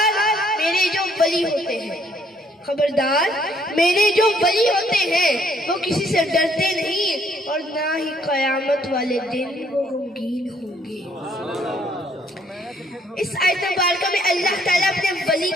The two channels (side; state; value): both; normal; correlation 0.66